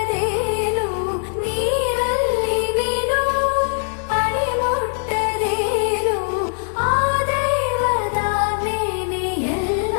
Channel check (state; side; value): silent; right; 57 dB below the other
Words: ನೀರಲ್ಲಿ ಮೀನು ಅಡಿ ಮುಟ್ಟದೇನು, ಆ ದೈವದಾಜ್ಞೆನೇ